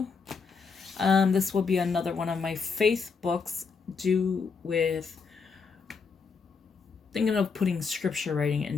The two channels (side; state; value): right; quieter; 5.2 dB